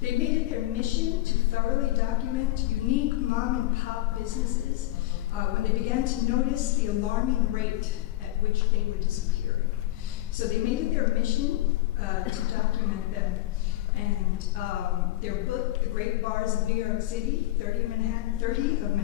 They made it their mission to thoroughly document unique mom and pop businesses when they began to notice the alarming rate at which they were disappearing. So they made it their mission to document them. And their book, The Great Bars of New York City, 30 of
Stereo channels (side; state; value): right; quieter; 16.5 dB